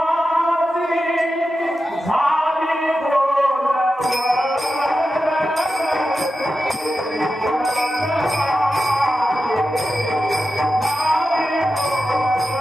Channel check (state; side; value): normal; both; correlation 0.91